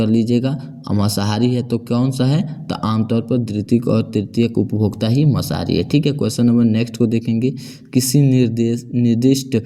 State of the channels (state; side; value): identical; both; correlation 1.00